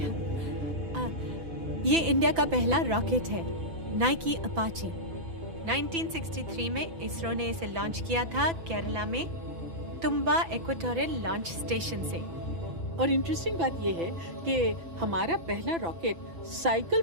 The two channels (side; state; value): left; late; 6.0 ms